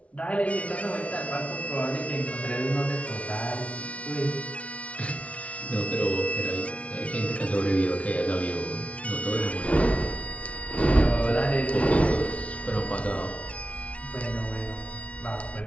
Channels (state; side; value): late; right; 0.064 ms